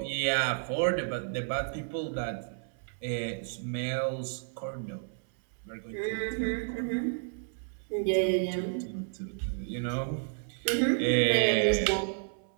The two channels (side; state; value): left; silent; 57 dB below the other